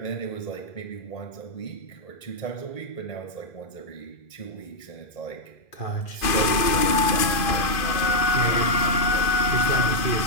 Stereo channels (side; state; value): right; late; 2.4 ms